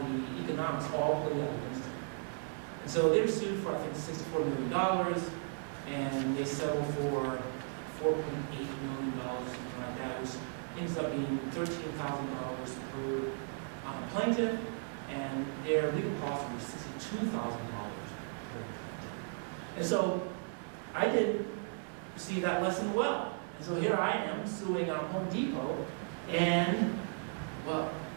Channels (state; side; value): silent; left; 54 dB below the other